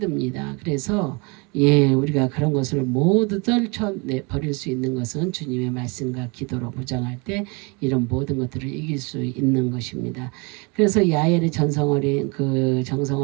그래서 우리가 그런 것을 모두 떨쳐버릴 수 있는 것은 주님의 말씀과 기도로 무장할 때 이런 모든 것들을 이길 수 있는 것입니다. 그래서 야엘의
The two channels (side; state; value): left; quieter; 30.0 dB